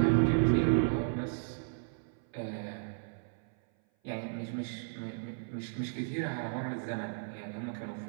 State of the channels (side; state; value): left; silent; 55 dB below the other